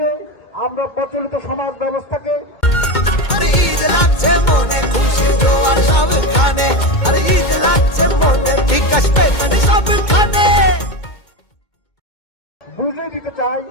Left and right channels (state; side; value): late; right; 2.2 ms